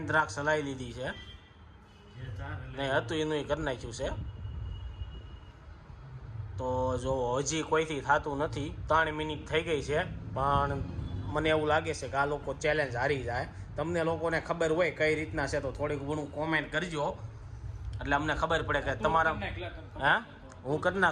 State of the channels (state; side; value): identical; both; correlation 1.00